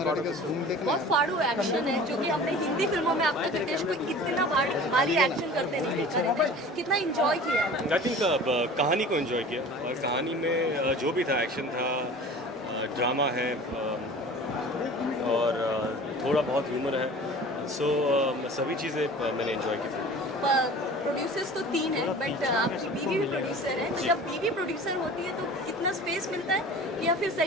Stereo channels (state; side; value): normal; both; correlation 0.41